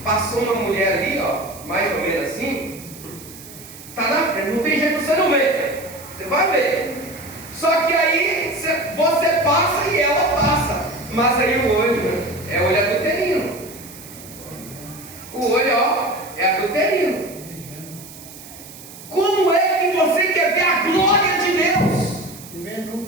passou uma mulher ali, ó, mais ou menos assim, tá na frente, não tem jeito, você não vê, você vai ver. Só que aí você passa e ela passa, mas aí o olho é olho adulterino. O olho, ó, é adulterino. Como é que você quer ver a glória de Deus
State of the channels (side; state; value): right; noise; hiss, 17 dB below the sound